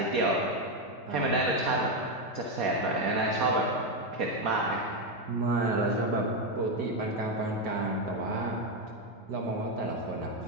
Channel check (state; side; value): normal; both; correlation 0.07